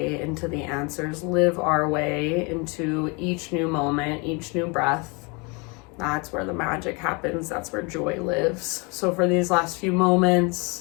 into the answers, live our way into each new moment, each new breath. That's where the magic happens. That's where joy lives. So for these last few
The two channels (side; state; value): right; quieter; 30.4 dB